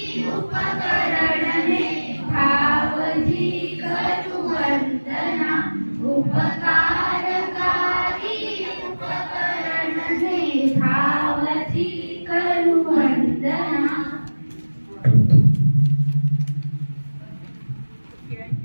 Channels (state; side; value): inverted; both; correlation -1.00